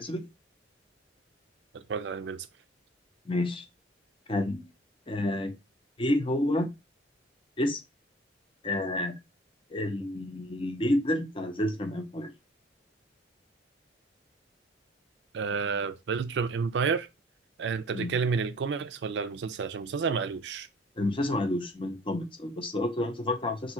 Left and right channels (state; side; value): normal; both; correlation 0.51